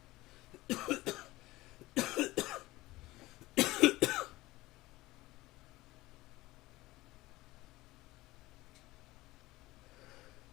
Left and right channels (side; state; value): right; quieter; 18.9 dB